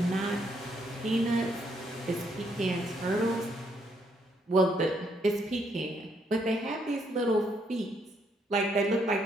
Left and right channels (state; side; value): normal; both; correlation 0.73